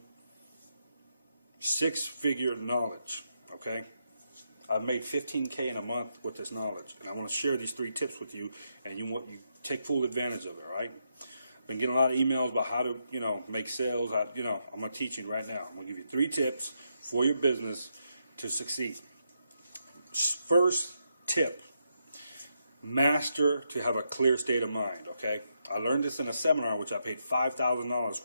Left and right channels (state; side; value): inverted; both; correlation -0.81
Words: six-figure knowledge, okay? I've made $15K in a month with this knowledge, and I want to share these 3 tips with you, and you take full advantage of it, all right? Been getting a lot of emails about how to, make sales. I'm going to teach you right now. I'm going to give you 3 tips for your business to succeed. First tip, master to have a clear state of mind, okay? I learned this in a seminar, which I paid $5,000